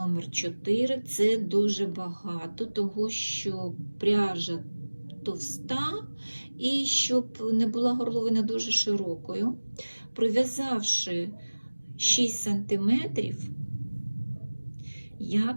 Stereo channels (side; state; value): both; inverted; correlation -1.00